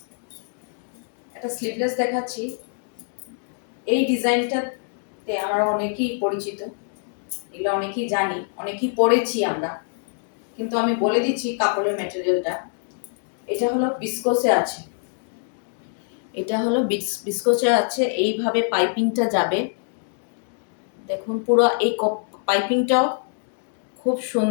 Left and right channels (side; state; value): right; silent; 62 dB below the other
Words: একটা স্লিভলেস দেখাচ্ছি। এই ডিজাইনটাতে আমরা অনেকেই পরিচিত, এগুলো অনেকেই জানি, অনেকেই পরেছি আমরা, কিন্তু আমি বলে দিচ্ছি কাপড়ের ম্যাটেরিয়ালটা। এটা হলো বিস্কোসে আছে। এটা হলো বিস্কোসে আছে। এইভাবে পাইপিংটা যাবে, দেখুন পুরো এই পাইপিংটাও খুব